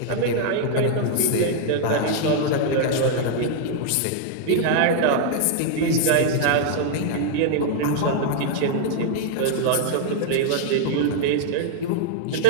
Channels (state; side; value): different; both; correlation -0.01